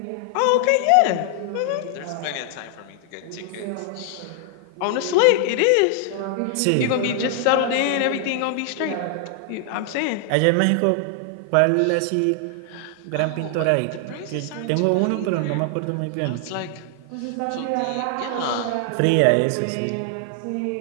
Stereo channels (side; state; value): both; different; correlation 0.00